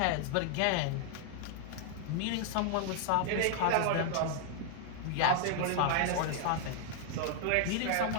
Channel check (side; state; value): both; different; correlation 0.00